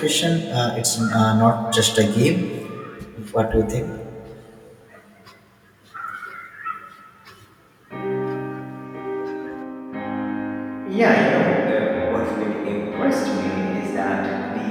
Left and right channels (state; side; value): identical; both; correlation 1.00